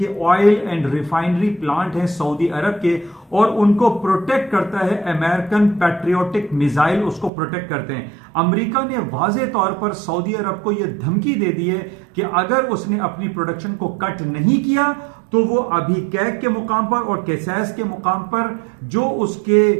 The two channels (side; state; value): left; drops out; at 7.3 s